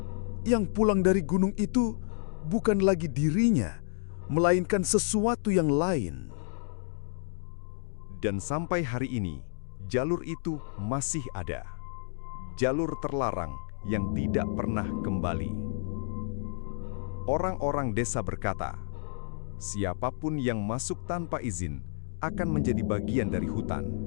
yang pulang dari gunung itu bukan lagi dirinya, melainkan sesuatu yang lain? Dan sampai hari ini, jalur itu masih ada. Jalur terlarang yang tidak pernah kembali. Orang-orang desa berkata, siapapun yang masuk tanpa izin akan menjadi bagian dari hutan.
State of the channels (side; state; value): right; silent; digital silence